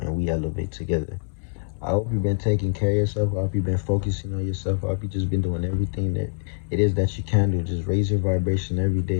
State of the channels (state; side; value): silent; right; 62 dB below the other